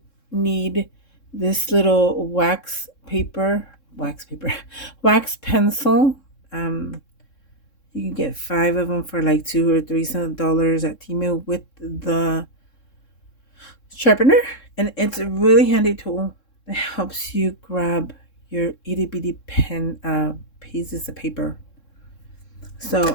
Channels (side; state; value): right; late; 3.7 ms